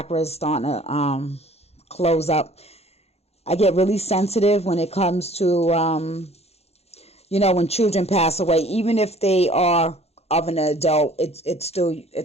is starting to close up. I get really sensitive when it comes to, when children pass away. Even if they are of an adult, it's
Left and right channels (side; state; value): right; late; 0.30 ms